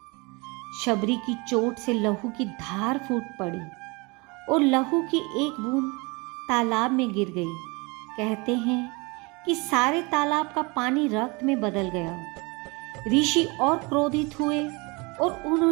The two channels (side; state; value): left; quieter; 27.5 dB